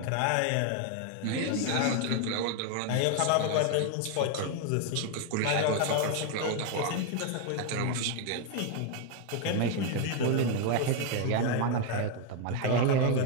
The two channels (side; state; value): both; different; correlation 0.01